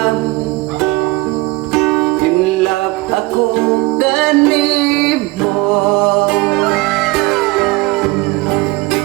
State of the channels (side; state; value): left; quieter; 22.2 dB